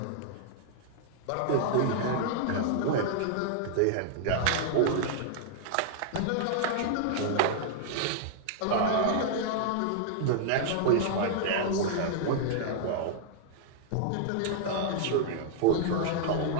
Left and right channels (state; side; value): different; both; correlation -0.01